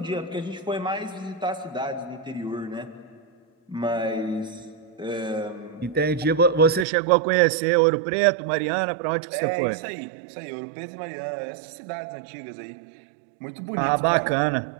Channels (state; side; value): drops out; left; at 6.9 s